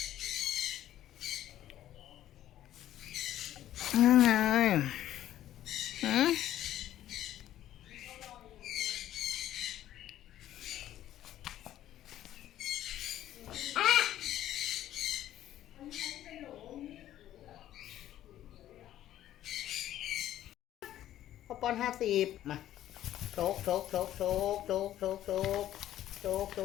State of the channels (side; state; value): right; quieter; 12.6 dB